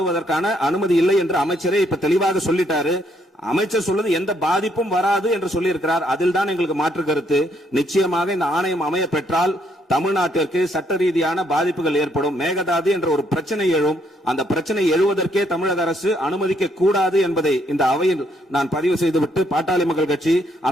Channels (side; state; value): both; normal; correlation 0.71